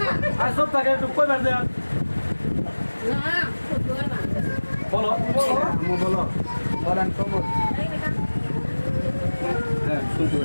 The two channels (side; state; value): both; inverted; correlation -1.00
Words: আর সব টাকা একটু কই বের দেন। বলো, বলো বলেন কবল। হ্যাঁ, শুনতে